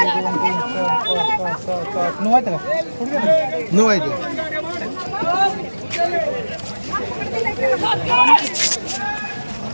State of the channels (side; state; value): both; inverted; correlation -1.00